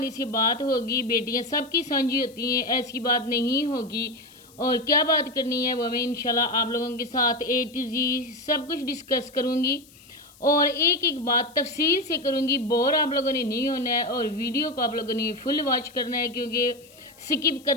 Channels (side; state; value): left; noise; hiss, 25 dB below the sound